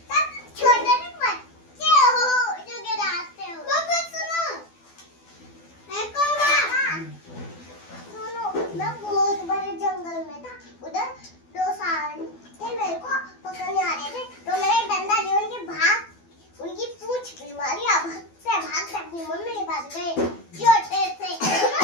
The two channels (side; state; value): right; late; 12 ms